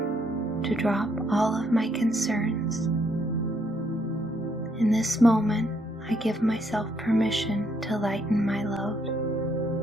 to drop all of my concerns. In this moment, I give myself permission to lighten my load.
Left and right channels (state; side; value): normal; both; correlation 0.72